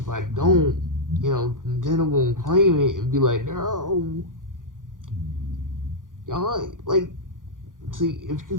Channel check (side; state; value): left; late; 0.89 ms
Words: I don't, Nintendo won't claim it and be like, no, y'all like. See, if you're